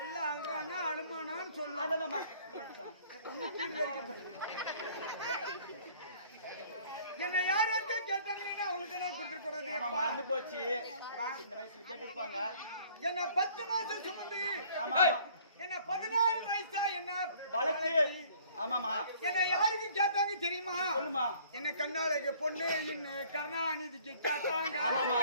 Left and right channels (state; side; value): inverted; both; correlation -0.55